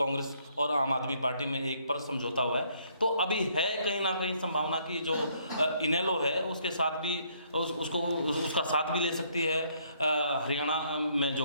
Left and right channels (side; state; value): both; inverted; correlation -0.67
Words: और आम आदमी पार्टी में एक पर समझौता हुआ है, तो अभी है कहीं ना कहीं संभावना कि जो इनेलो है उसके साथ भी उसका साथ भी ले सकती है हरियाणा में